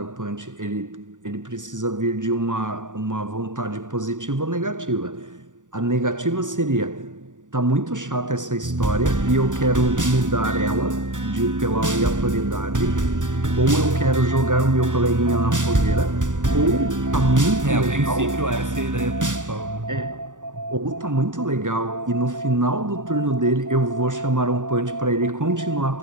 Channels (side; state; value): left; late; 0.87 ms